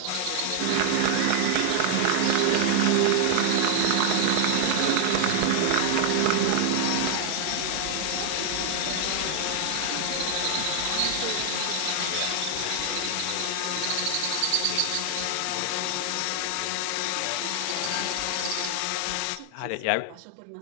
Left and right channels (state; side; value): different; both; correlation 0.00